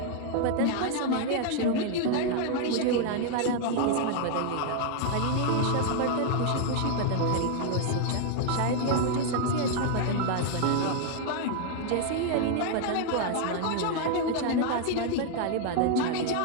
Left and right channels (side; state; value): both; different; correlation 0.00